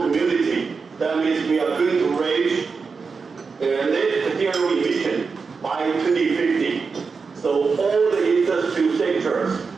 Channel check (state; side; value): quieter; left; 5.0 dB